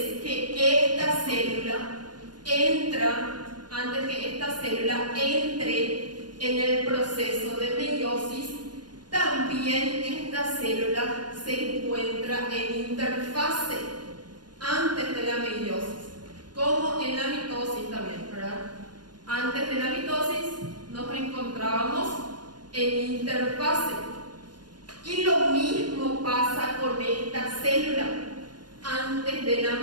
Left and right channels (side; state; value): left; late; 0.70 ms